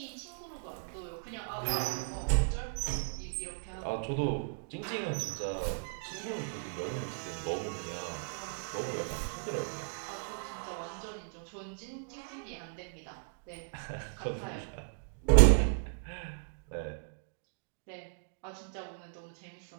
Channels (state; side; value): silent; left; digital silence